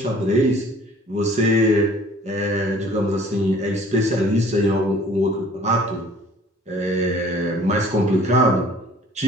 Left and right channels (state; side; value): normal; both; correlation 0.52